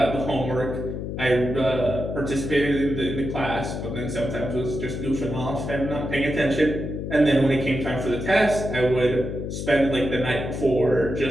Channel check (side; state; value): left; noise; hum, 5 dB below the sound